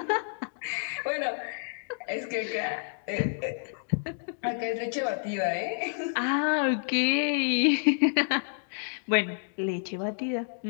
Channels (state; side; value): silent; right; digital silence